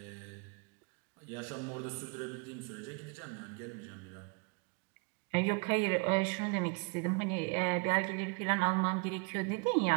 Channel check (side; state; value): left; quieter; 34.3 dB